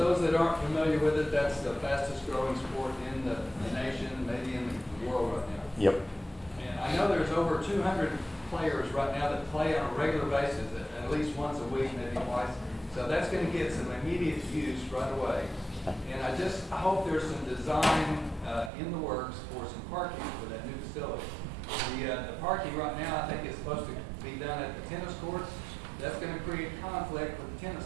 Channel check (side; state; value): left; drops out; at 18.7 s